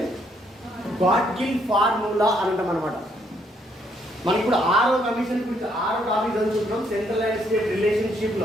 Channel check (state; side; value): normal; both; correlation 0.71